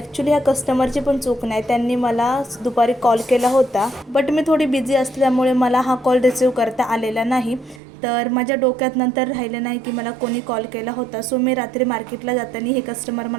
ह्या कस्टमरची पण चूक नाही. त्यांनी मला दुपारी कॉल केला होता, बट मी थोडी बिझी असल्यामुळे मला हा कॉल रिसीव्ह करता आलेला नाही. तर माझ्या डोक्यात नंतर राहिलं नाही की मला कोणी कॉल केला होता. सो मी रात्री मार्केटला जाताना हे कस्टमर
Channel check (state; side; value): drops out; left; at 7.8 s